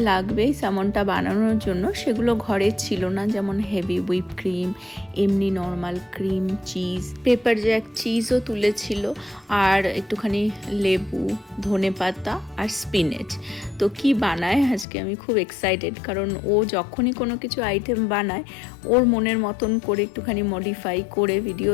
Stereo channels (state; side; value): drops out; right; at 14.9 s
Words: লাগবে স্যামনটা বানানোর জন্য, সেগুলো ঘরে ছিল না, যেমন হেভি হুইপ ক্রিম, এমনি normal cream, cheese, pepper jack চিজও তুলেছিল, আর একটুখানি লেবু, ধনেপাতা আর স্পিনেচ। তো কি বানায় আজকে আমি খুব এক্সাইটেড, কারণ ও যখনই কোনো কিছু আইটেম বানায় ওর মনের মতন করে একটুখানি মডিফাই করে ভিডিও